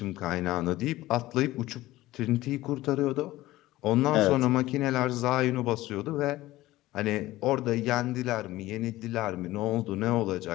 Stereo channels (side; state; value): right; quieter; 17.0 dB